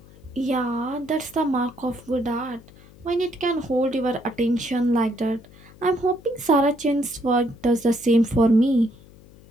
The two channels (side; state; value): left; noise; hum, 23 dB below the sound